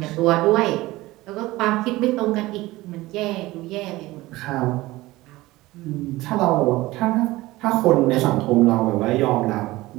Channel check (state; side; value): quieter; left; 18.9 dB